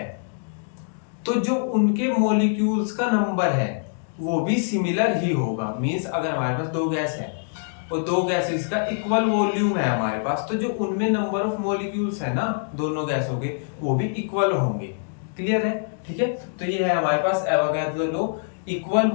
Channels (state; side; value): silent; right; digital silence